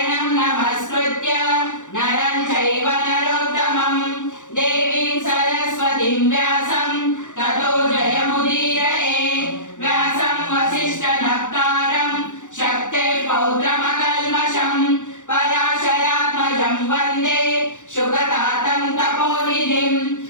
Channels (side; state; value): right; late; 0.86 ms